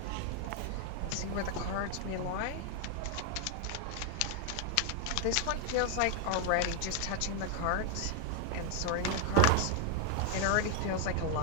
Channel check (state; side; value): different; both; correlation 0.00